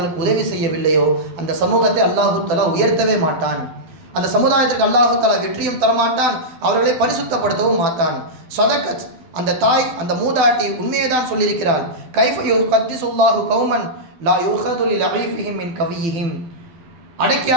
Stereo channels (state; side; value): late; left; 12 ms